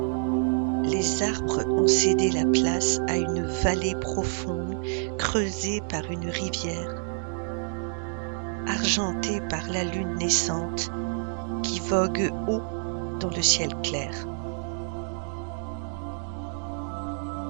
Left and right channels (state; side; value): silent; left; 60 dB below the other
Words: les arbres ont cédé la place à une vallée profonde creusée par une rivière, argentée par la lune naissante qui vogue haut dans le ciel clair.